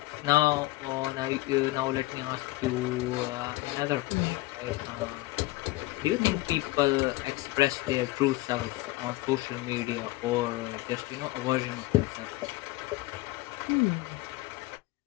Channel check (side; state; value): right; quieter; 19.6 dB